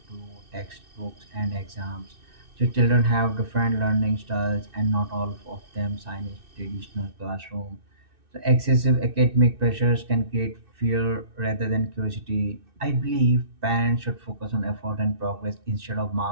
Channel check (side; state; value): left; late; 2.6 ms